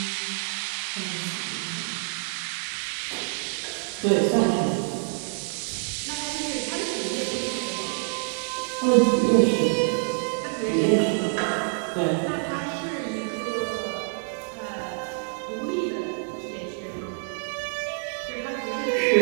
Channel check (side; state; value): left; silent; 60 dB below the other